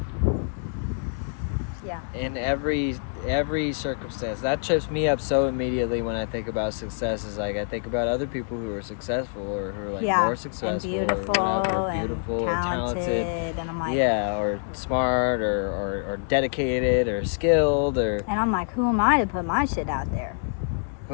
Yeah. In every circumstance. That trips me up so immediately when I think about success. Is like I think about other people who are successful or who are like more successful and beautiful, or whatever, beautiful or talented. And I'm like, Yeah, or smart or dedicated or skilled, or and I'm like, who am I to put my shit out there?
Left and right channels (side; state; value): right; silent; 61 dB below the other